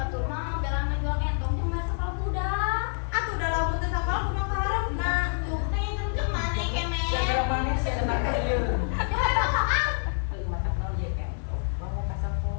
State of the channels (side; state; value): right; silent; digital silence